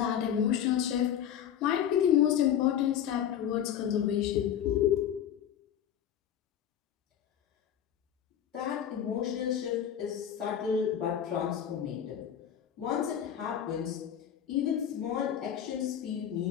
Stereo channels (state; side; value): quieter; right; 9.6 dB